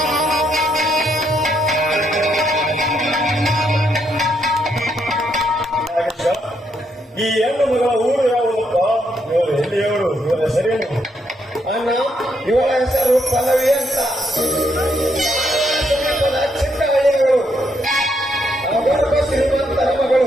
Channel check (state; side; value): normal; both; correlation 0.76